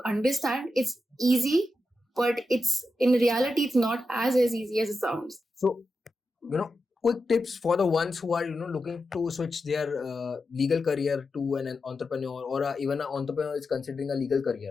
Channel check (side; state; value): both; normal; correlation 0.89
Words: understand. It's easy, but it's in reality it's not as easy as it sounds. So, quick tips for the ones who are looking to switch their legal career to an entrepreneur, or even an entrepreneur is considering a legal